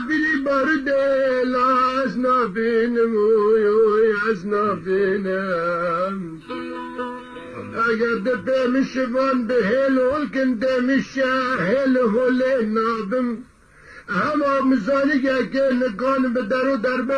بلي برد لازنا بينم ويعزنا بينم أقد بهم شبان بهل والكن دم الشاهل هو لنابم هما مزاني كان كان بدرو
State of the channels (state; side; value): identical; both; correlation 1.00